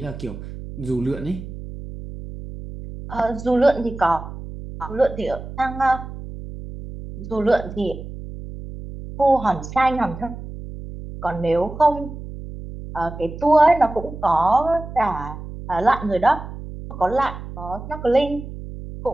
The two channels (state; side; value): noise; right; hum, 11 dB below the sound